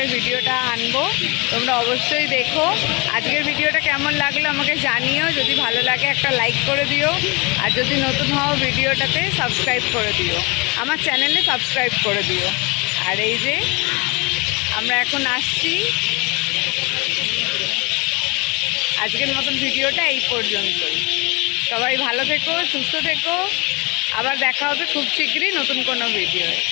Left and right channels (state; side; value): quieter; right; 28.1 dB